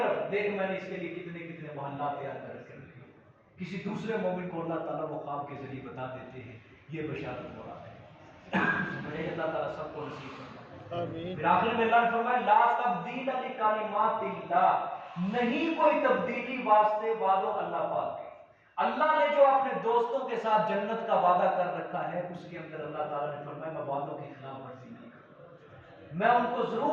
دیکھ میں نے اس کے لیے کتنے کتنے محلات تیار کر کے رکھے۔ کسی دوسرے مومن کو اللہ تعالیٰ وہ خواب کے ذریعے بتا دیتے ہیں، یہ بشارت ہو رہا ہے۔ اللہ تعالیٰ سب کو نصیب فرمائے۔ پھر آخر میں اللہ نے فرمایا لا تبدیل لکلمات اللہ، نہیں کوئی تبدیلی واسطے وعدوں اللہ پاک کے۔ اللہ نے جو اپنے دوستوں کے ساتھ جنت کا وعدہ کر رکھا ہے اس کے اندر اللہ تعالیٰ نے فرمایا میں وعدوں کی خلاف ورزی نہیں کروں گا، میں ان کو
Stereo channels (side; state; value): both; identical; correlation 1.00